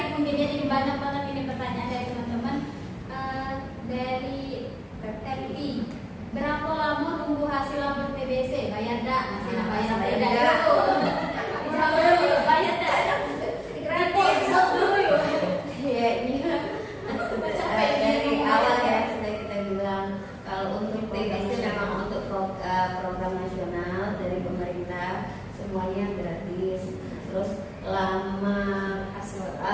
mungkin ya, jadi banyak banget ini pertanyaan dari teman-teman. Dari Teti, berapa lama nunggu hasil labor TBC? Bayar dak? Masih nak bayar Bayar dak? dak. Bayar dak? Gratis. Ya ini dari awal ya sudah kita bilang kalau untuk TBC memang untuk program nasional dari pemerintah semuanya gratis. Terus lama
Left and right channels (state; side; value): identical; both; correlation 1.00